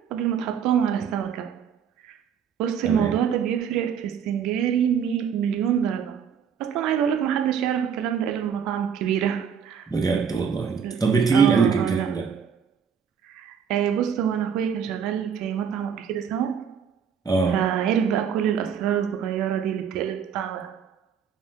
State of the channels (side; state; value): left; quieter; 7.4 dB